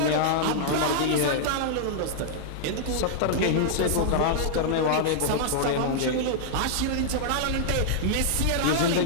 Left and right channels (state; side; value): different; both; correlation -0.01